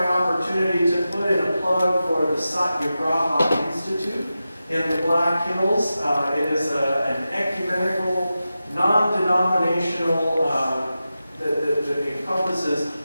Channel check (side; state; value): both; inverted; correlation -0.92